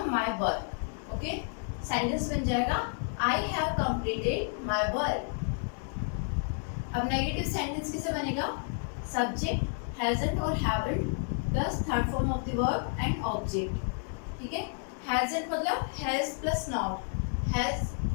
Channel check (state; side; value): silent; right; 55 dB below the other